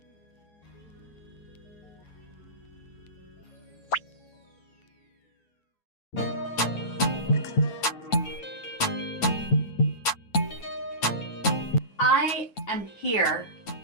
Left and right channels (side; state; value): right; late; 9.1 ms